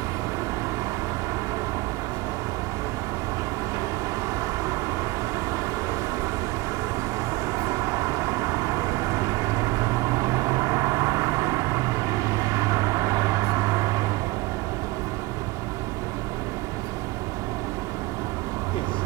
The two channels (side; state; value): left; quieter; 20.9 dB